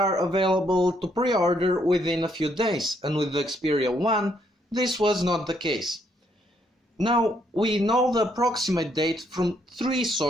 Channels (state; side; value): normal; both; correlation 0.72